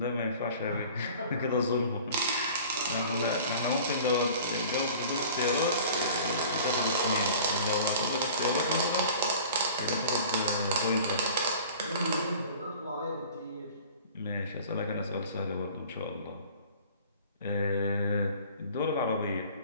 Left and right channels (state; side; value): inverted; both; correlation -0.45